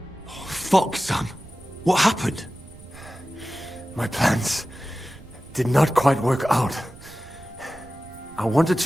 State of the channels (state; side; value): noise; right; rumble, 19 dB below the sound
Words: Fuck, son. What happened? My plans did not quite work out. I wanted